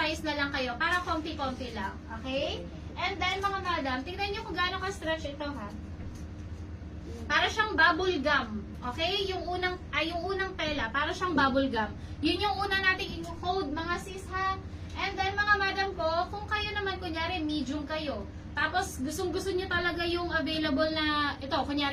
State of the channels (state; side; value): identical; both; correlation 1.00